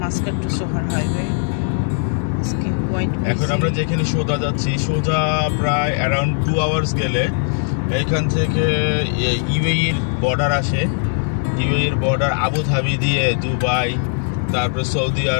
মাস্কাট টু সোহার হাইওয়ে। এখন আমরা যেখানে সোজা যাচ্ছি, সোজা প্রায় অ্যারাউন্ড 2 আওয়ার্স গেলে এইখান থেকে ইউএইর বর্ডার আসে। ইউএইর বর্ডার আবুধাবি দিয়ে দুবাই, তারপরে সৌদি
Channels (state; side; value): silent; right; digital silence